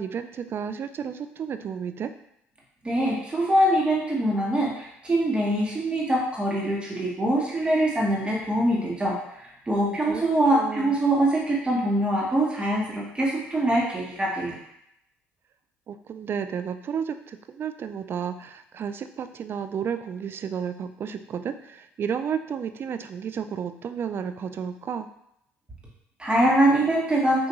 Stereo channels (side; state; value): both; normal; correlation 0.73